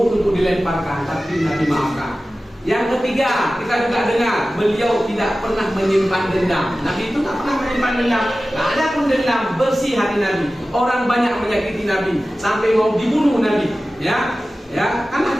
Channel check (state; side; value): normal; both; correlation 0.96